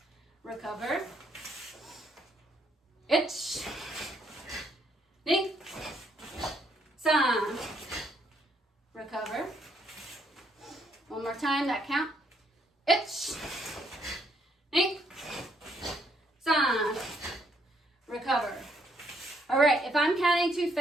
recover, itch, knee, san, recover. One more time, that count. Itch, knee, san, recover. All right, if I'm counting too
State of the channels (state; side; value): normal; both; correlation 0.71